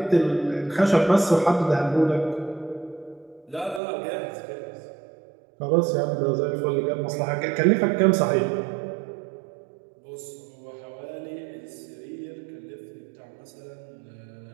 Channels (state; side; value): drops out; left; at 3.8 s